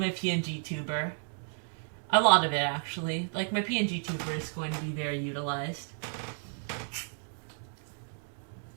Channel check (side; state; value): left; silent; 56 dB below the other